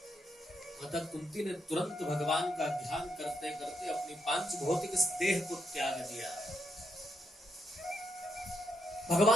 माता कुंती ने तुरंत भगवान का ध्यान करते करते अपनी पांच भौतिक देह को त्याग दिया।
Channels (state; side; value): normal; both; correlation 0.80